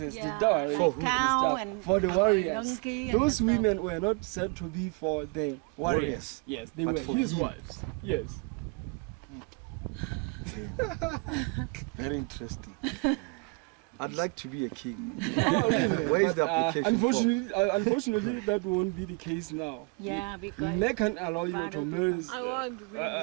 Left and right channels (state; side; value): quieter; left; 31.4 dB